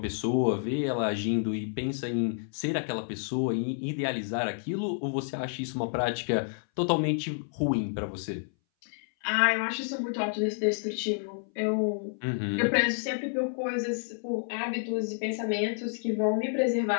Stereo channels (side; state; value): right; silent; 58 dB below the other